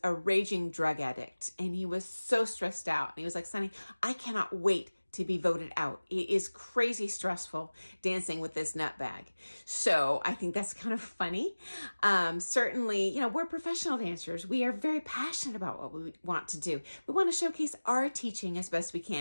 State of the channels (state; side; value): inverted; both; correlation -1.00